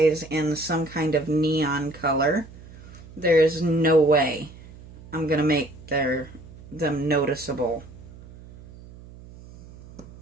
in some kind of neon color, there's no way I'm going to make them noticeable.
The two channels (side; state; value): right; noise; hum, 19 dB below the sound